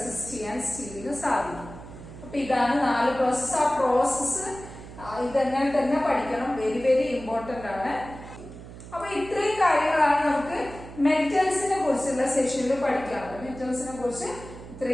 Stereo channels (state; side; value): noise; right; hum, 15 dB below the sound